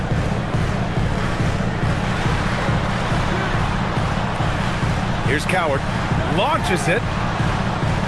Here's Coward. Launches it.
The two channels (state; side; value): identical; both; correlation 1.00